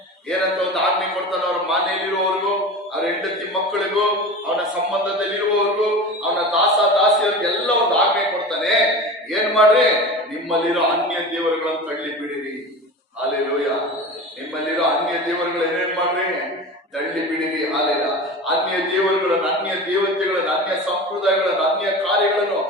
ಏನಂತ ಒಂದು ಆಜ್ಞೆ ಕೊಡ್ತಾನೆ. ಅವ್ರ ಮನೆಯಲ್ಲಿರುವವರಿಗೂ, ಅವ್ರ ಹೆಂಡತಿ ಮಕ್ಕಳಿಗೂ, ಅವನ ಸಂಬಂಧದಲ್ಲಿರುವವರಿಗೂ, ಅವನ ದಾಸಿಯರಿಗೂ ಮಾಡ್ರಿ, ನಿಮ್ಮಲ್ಲಿರೋ ಅನ್ಯ ದೇವರುಗಳನ್ನು ತಳ್ಳಿ ಬಿಡಿರಿ. ಹಾಲೆಲೂಯ. ನಿಮ್ಮಲ್ಲಿರೋ ಅನ್ಯ ದೇವರುಗಳು ಏನೇನ್ ಮಾಡ್ರಿ, ತಳ್ಳಿ ಬಿಡಿರಿ. ಹಾಲೆಲ್ಲ ಅನ್ಯ ದೇವರುಗಳನ್ನು, ಅನ್ಯ ದೇವತೆಗಳನ್ನು, ಅನ್ಯ ಸಂಪ್ರದಾಯಗಳನ್ನು, ಅನ್ಯ ಕಾರ್ಯಗಳನ್ನು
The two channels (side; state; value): both; normal; correlation 0.32